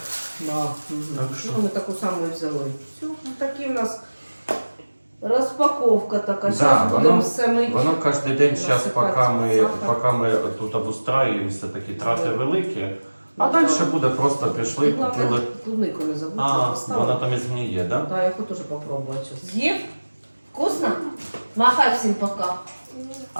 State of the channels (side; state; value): both; inverted; correlation -1.00